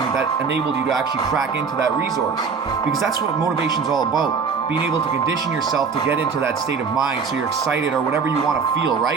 that enabled you to actually crack into that resource? Because that's what motivation is all about. Being able to condition yourself to get into that state of mind so you're excited or whatever you want to feel,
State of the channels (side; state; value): left; quieter; 5.5 dB